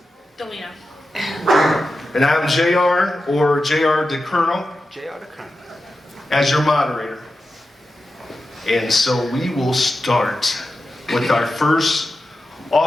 Delina. And I'm JR, or JR the Colonel, as your moderator. And so we will start with our first.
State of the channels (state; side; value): normal; both; correlation 0.91